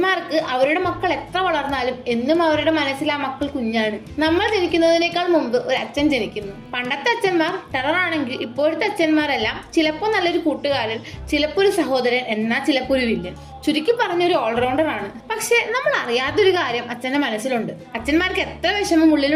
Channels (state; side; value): identical; both; correlation 1.00